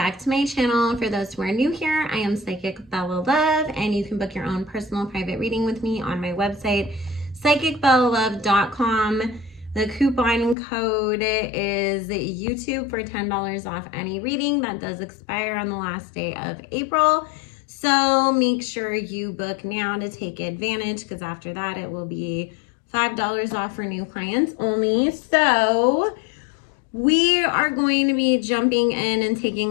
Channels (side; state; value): right; drops out; at 10.6 s